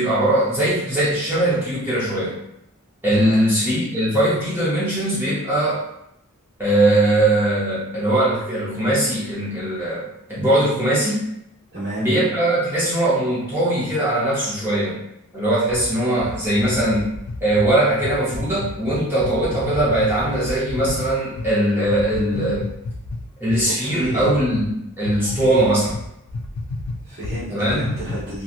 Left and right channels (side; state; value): both; normal; correlation 0.46